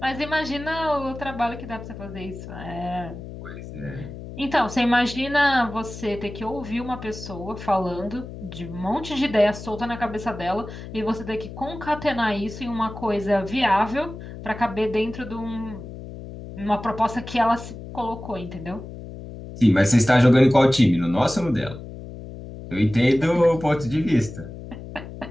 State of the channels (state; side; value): noise; left; hum, 12 dB below the sound